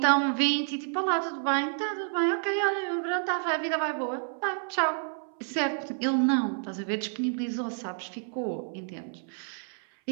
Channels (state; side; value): silent; left; 58 dB below the other